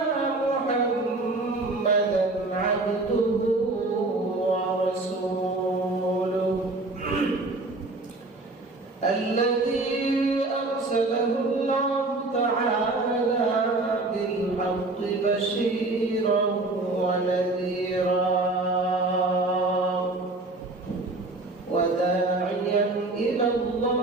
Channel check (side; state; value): left; quieter; 3.1 dB